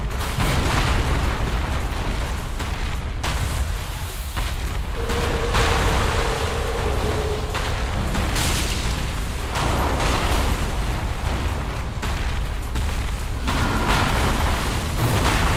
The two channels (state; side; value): identical; both; correlation 1.00